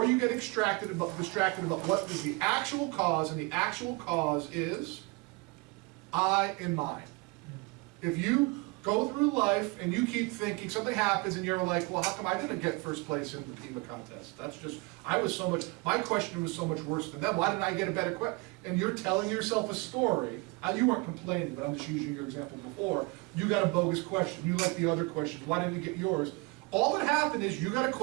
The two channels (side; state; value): left; quieter; 27.5 dB